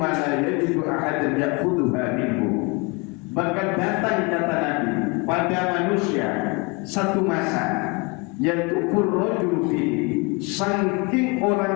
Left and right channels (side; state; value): right; quieter; 28.2 dB